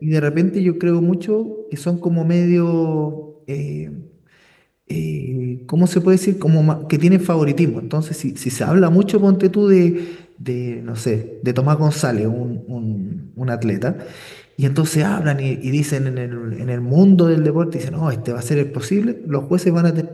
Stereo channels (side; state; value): both; identical; correlation 1.00